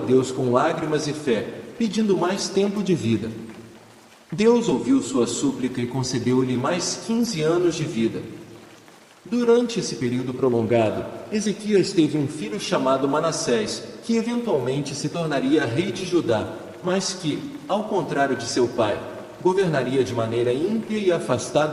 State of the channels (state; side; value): identical; both; correlation 1.00